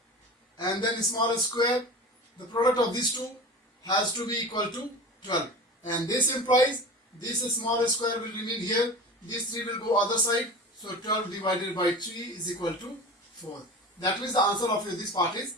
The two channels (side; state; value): both; normal; correlation 0.33